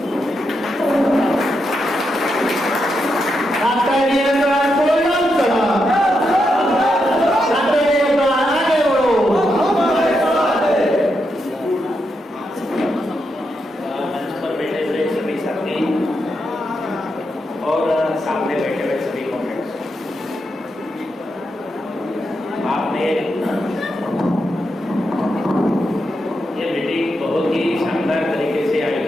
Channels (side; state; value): both; normal; correlation 0.84